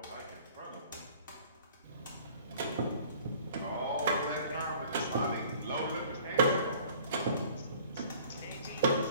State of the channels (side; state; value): both; inverted; correlation -0.50